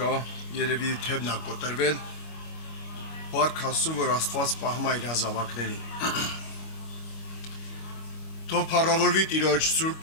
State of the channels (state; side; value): late; right; 25 ms